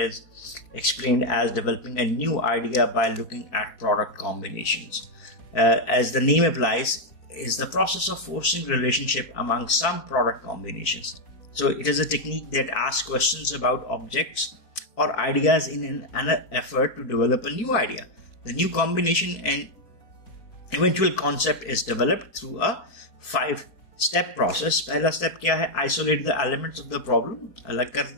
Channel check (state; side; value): late; right; 4.6 ms